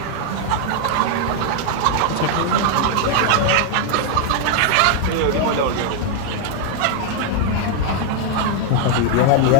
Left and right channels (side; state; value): both; different; correlation 0.00